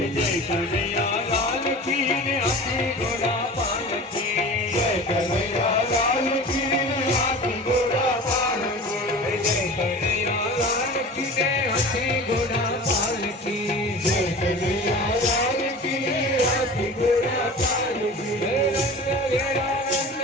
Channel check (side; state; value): both; normal; correlation 0.37